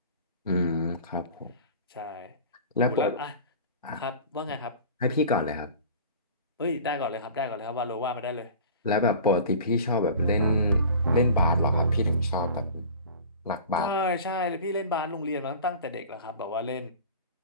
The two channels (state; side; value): inverted; both; correlation -0.40